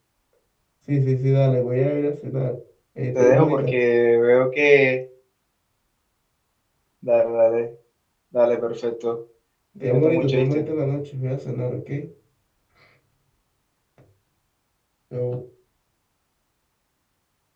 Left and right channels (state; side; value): identical; both; correlation 1.00